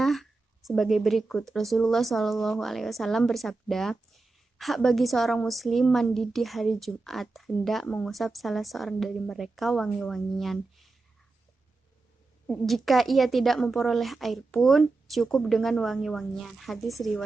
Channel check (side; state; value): left; quieter; 3.5 dB